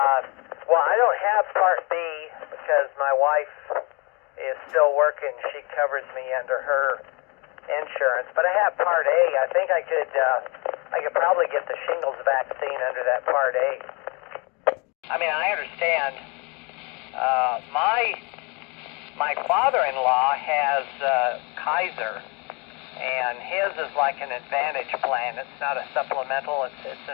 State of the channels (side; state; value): right; quieter; 30.6 dB